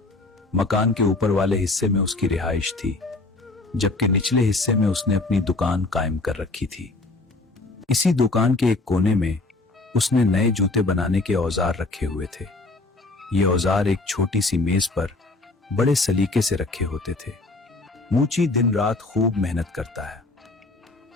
मकान के ऊपर वाले हिस्से में उसकी रिहाइश थी, जबकि निचले हिस्से में उसने अपनी दुकान कायम कर रखी थी। इसी दुकान के एक कोने में उसने नए जूते बनाने के औजार रखे हुए थे। ये औजार एक छोटी सी मेज पर बड़े सलीके से रखे होते थे। मूची दिन रात खूब मेहनत करता है,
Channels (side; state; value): right; quieter; 3.2 dB